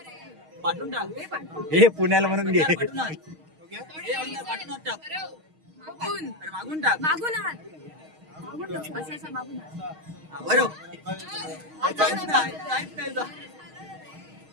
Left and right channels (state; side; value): late; left; 6.4 ms